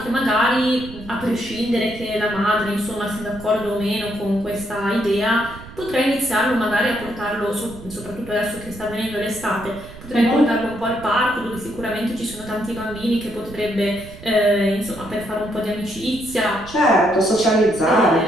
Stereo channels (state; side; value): noise; right; rumble, 16 dB below the sound